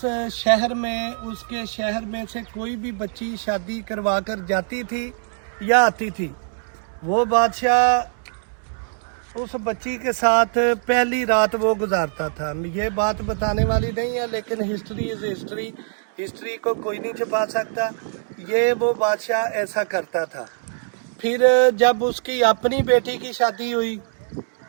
शहर में, उसके शहर में से कोई भी बच्ची शादी करवा कर जाती थी या आती थी, वो बादशाह उस बच्ची के साथ पहली रात वो गुजारता था। ये बात बताने वाली नहीं है, लेकिन हिस्ट्री इज़ हिस्ट्री, हिस्ट्री को कोई नहीं छुपा सकता। ये वो बादशाह ऐसा करता था। फिर जब उसकी अपनी बेटी की शादी हुई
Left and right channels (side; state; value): left; silent; digital silence